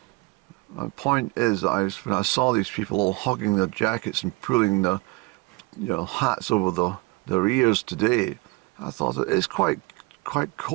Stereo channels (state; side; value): quieter; left; 24.7 dB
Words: My point is that when I saw these people all hugging their jackets and pulling their hats over their ears today, I thought it's quite